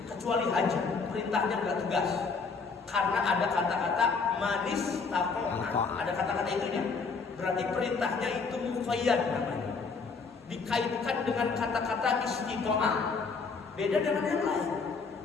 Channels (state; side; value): quieter; right; 4.8 dB